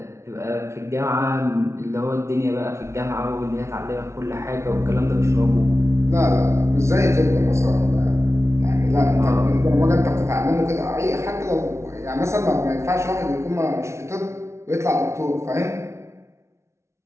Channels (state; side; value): late; left; 0.13 ms